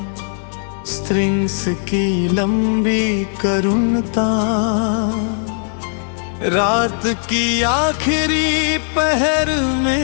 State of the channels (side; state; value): right; silent; digital silence